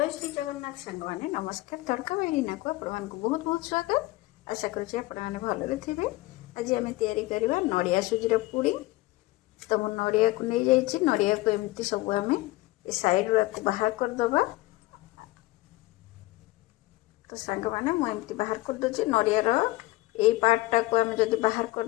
श्री जगन्नाथ सांग मैंने नमस्कार तड़का मेरीना को आपण बहुत बहुत स्वागत। आशा करुँचे आपने भलरे थे। आज आम या नड़िया सुजीर पुडिंग। तो मुझे नड़िया को नहीं जाइए नड़िया को एमती सब आम सैड्रु बाहर करदे। तो सांग मैंने मुझे बाहर करदे नड़ियार यही पार्टा को आम जब बाहर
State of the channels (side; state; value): right; quieter; 19.5 dB